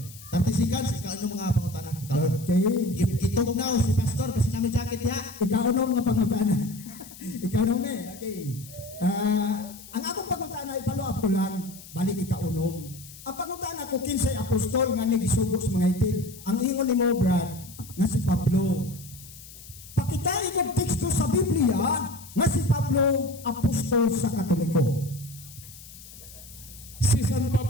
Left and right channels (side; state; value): left; noise; hiss, 18 dB below the sound